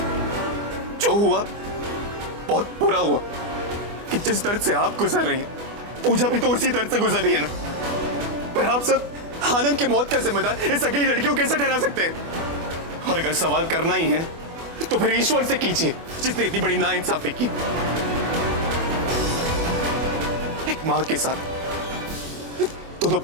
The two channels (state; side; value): late; left; 24 ms